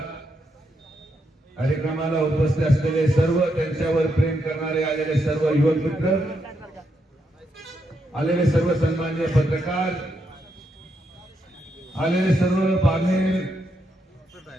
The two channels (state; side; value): normal; both; correlation 0.81